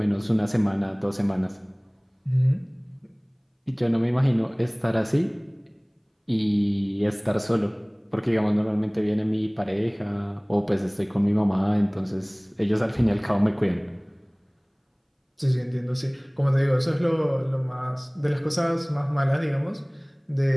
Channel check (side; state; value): both; identical; correlation 1.00